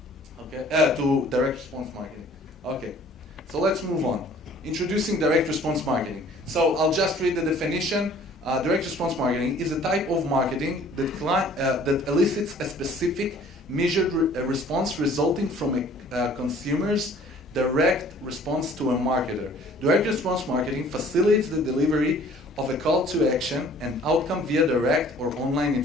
Okay, to direct response marketing. Okay, so let's move on. Introducing direct response marketing. So I'll just read the definition. Direct response marketing is a type of marketing that elicits a specific measured response resulting from a consumer's direct response to a marketer. Direct response marketing facilitates the delivery of a call to action and outcome via direct or online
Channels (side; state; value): both; normal; correlation 0.53